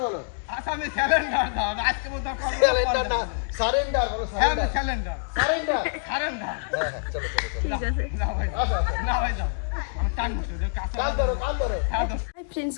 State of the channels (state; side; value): silent; right; digital silence